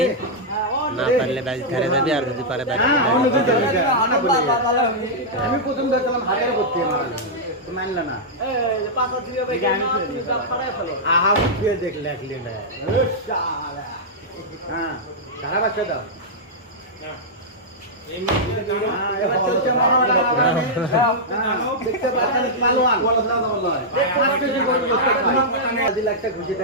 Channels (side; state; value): both; normal; correlation -0.08